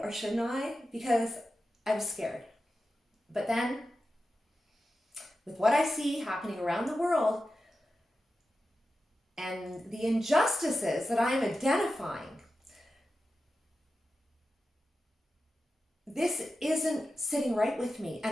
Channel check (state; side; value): normal; both; correlation 0.92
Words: or shouldn't I? Because I was scared. But then, with what I see happening around the world and the injustices that I am identifying, this isn't sitting right with me,